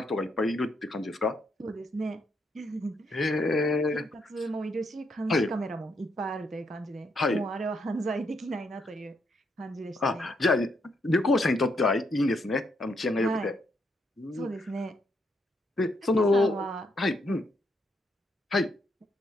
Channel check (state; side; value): normal; both; correlation 0.76